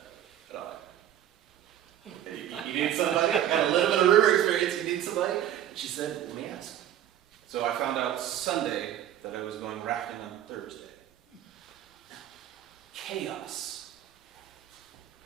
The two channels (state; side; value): quieter; left; 11.2 dB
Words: You need somebody? I got a little bit of river experience. You need somebody? And she said, let me ask. So I found out Sunday that I was going rafting on Thursday. Chaos